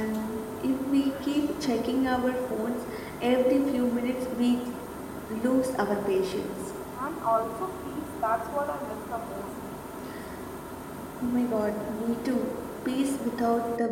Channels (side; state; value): both; identical; correlation 1.00